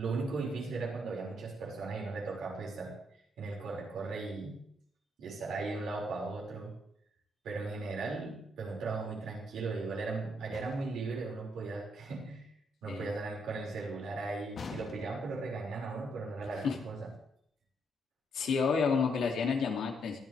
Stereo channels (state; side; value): normal; both; correlation 0.74